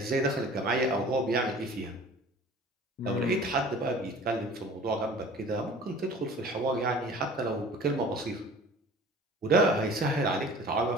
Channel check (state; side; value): normal; both; correlation 0.45